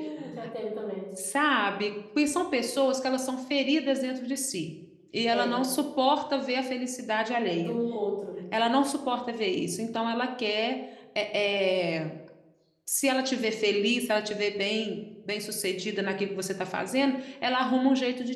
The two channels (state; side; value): identical; both; correlation 1.00